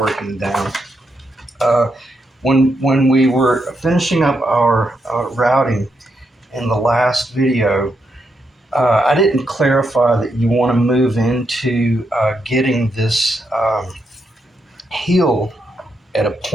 down. Uh, when we were finishing up our routing in the last video, I didn't clarify that you want to move into getting this heel at a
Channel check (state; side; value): normal; both; correlation 0.81